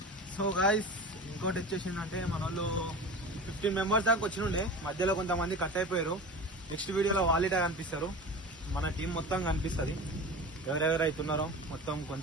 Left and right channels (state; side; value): normal; both; correlation 0.33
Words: సో గాయస్ ఇంకోటి వచ్చేసిందంటే మన వాళ్ళు 15 మెంబర్స్ దాకా వచ్చినుండే, మధ్యలో కొంతమంది కట్ అయిపోయారు. నెక్స్ట్ వీడియోలో వాళ్ళిటా కనిపిస్తారు, మన టీం మొత్తం కనిపిస్తుంది. ఎవరెవరు అవుతున్నారో మొత్తం,